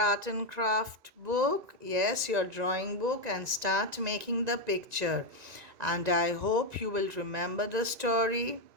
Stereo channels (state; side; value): late; left; 1.9 ms